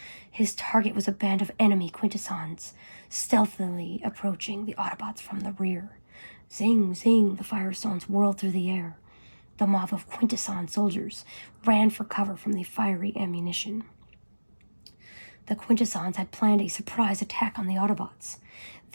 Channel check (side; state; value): both; inverted; correlation -1.00